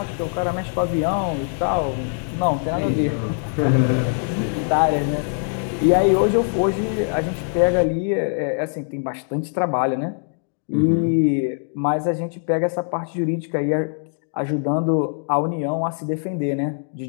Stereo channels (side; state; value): right; silent; 64 dB below the other